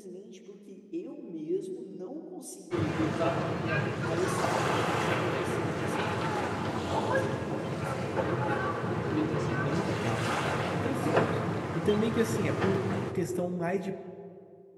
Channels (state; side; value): identical; both; correlation 1.00